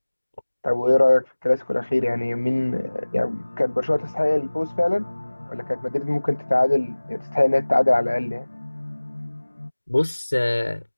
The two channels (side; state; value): both; inverted; correlation -1.00